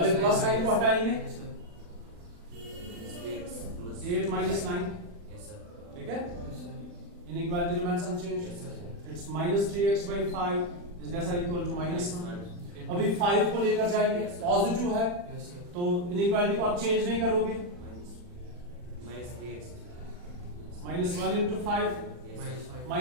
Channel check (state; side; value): late; left; 40 ms